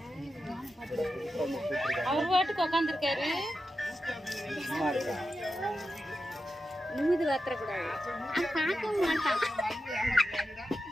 அவர் பாட்டுக்கு உட்காந்துருக்காரு. நிமிது வாத்தரக்கூடாது. பார்க்கவும் மாட்டான்.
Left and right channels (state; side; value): normal; both; correlation 0.90